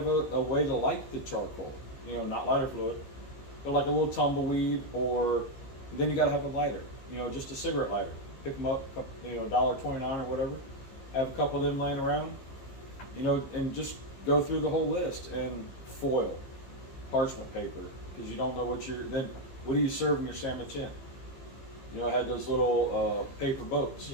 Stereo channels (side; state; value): right; late; 15 ms